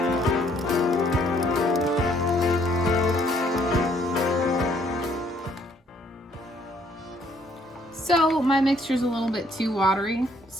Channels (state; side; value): normal; both; correlation 0.65